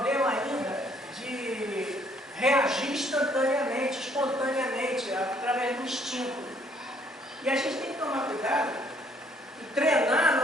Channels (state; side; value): normal; both; correlation 0.64